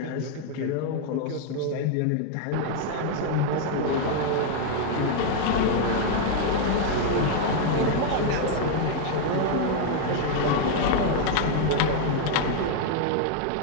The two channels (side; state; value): both; different; correlation 0.00